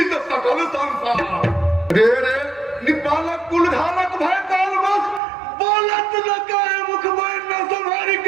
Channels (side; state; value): left; drops out; at 5.2 s